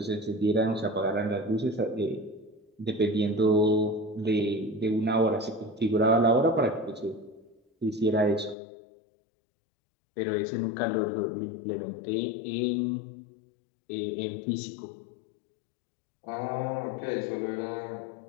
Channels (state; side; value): drops out; right; at 8.6 s